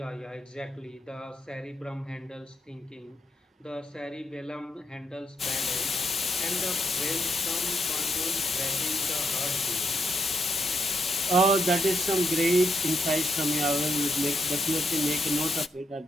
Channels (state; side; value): normal; both; correlation 0.79